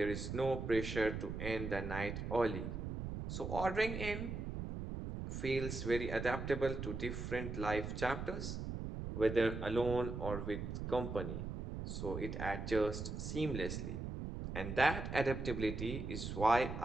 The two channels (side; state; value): right; noise; rumble, 5 dB below the sound